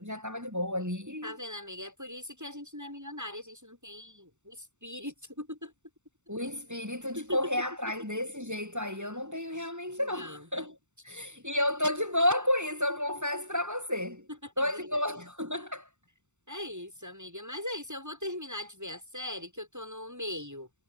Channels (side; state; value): left; late; 0.84 ms